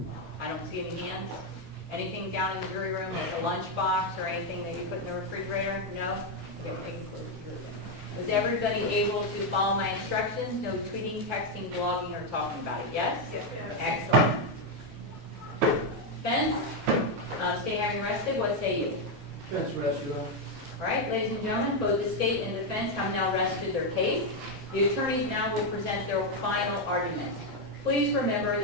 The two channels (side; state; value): both; normal; correlation 0.03